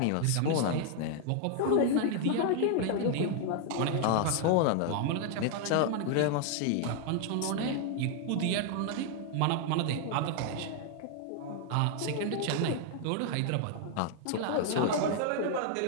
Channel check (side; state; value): both; different; correlation 0.00